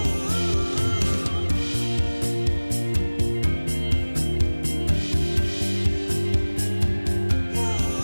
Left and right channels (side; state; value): both; inverted; correlation -1.00